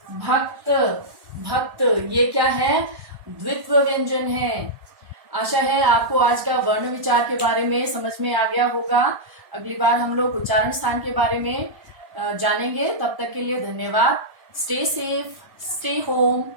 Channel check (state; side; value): late; left; 1.1 ms